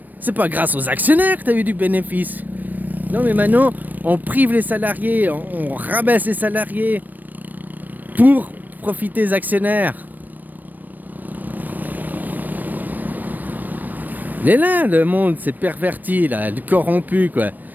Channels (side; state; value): left; late; 0.087 ms